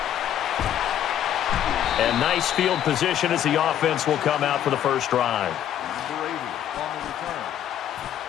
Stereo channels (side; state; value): right; quieter; 10.6 dB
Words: And nice field position as the offense will come out for the first drive. Number 80 on the return.